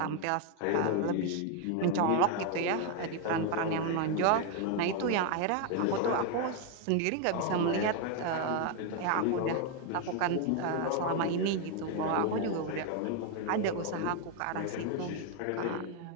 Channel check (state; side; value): different; both; correlation 0.01